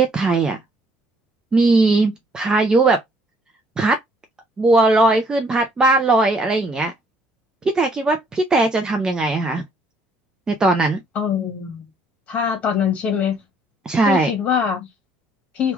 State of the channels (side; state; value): both; normal; correlation 0.64